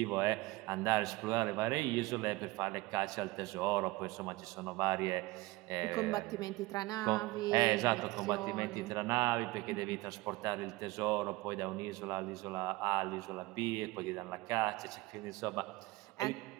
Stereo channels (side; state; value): left; quieter; 20.9 dB